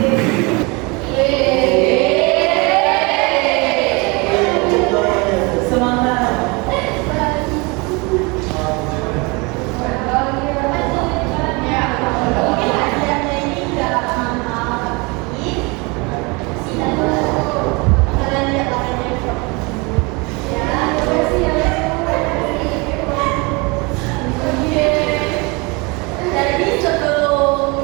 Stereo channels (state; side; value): quieter; left; 27.6 dB